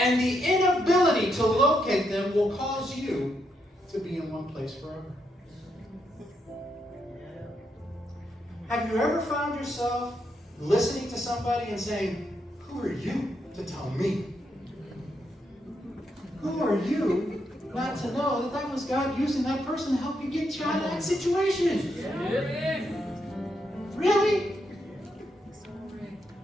the inability to locate them will cause you to be in one place forever. Have you ever found yourself listening to somebody and saying, who are you to tell me? Who are you not to know that that was God using that person to help you get you out of that situation? Yeah. Really?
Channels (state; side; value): normal; both; correlation 0.80